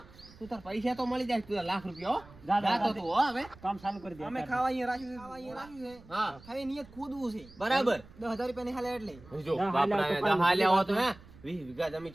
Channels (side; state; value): right; noise; rumble, 22 dB below the sound